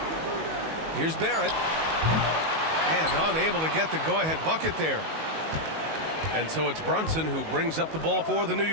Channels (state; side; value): late; left; 19 ms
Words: Here's Barrett. And unable to get the go-ahead bucket there. And so it's Brunson who brings up the ball for the New